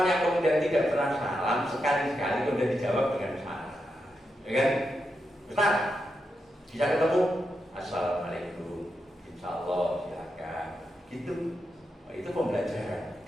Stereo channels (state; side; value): normal; both; correlation 0.86